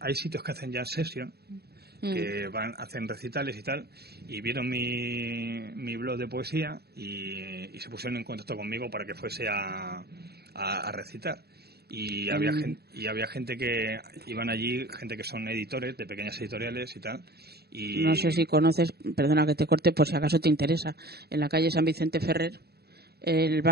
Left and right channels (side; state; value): left; late; 0.47 ms